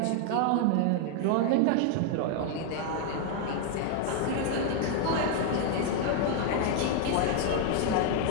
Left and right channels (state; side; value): different; both; correlation 0.00